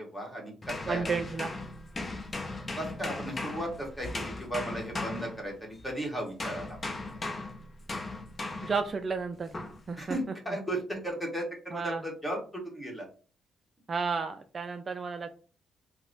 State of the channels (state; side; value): normal; both; correlation 0.78